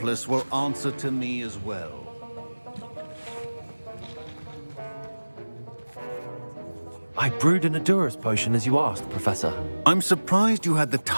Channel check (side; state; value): both; inverted; correlation -1.00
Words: will answer to me as well. I brewed an Edurus potion as you asked, Professor. I'm surprised you had the